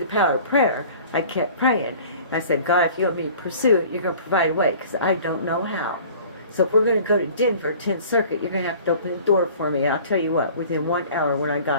power of prayer, I kept praying. And I said, God, if you want me to pursue it, you're going to provide a way because I don't know how. So if we're going to go to Denver, 10th Circuit, you're going to have to open the door for me. I'll tell you what, within 1 hour when I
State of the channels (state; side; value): inverted; both; correlation -0.46